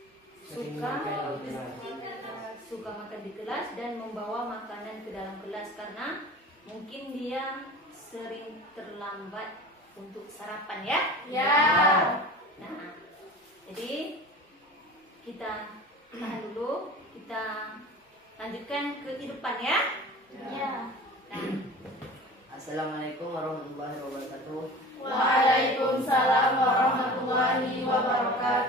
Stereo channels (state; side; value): normal; both; correlation 0.38